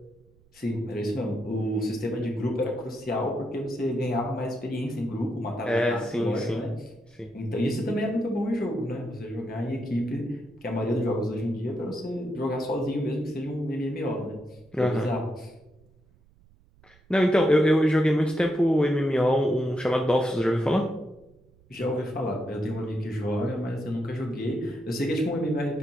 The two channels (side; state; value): right; noise; rumble, 30 dB below the sound